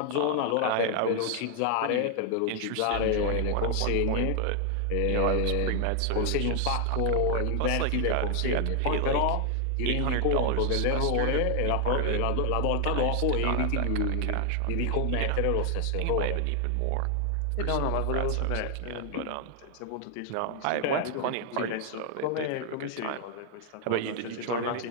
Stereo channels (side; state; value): both; different; correlation 0.00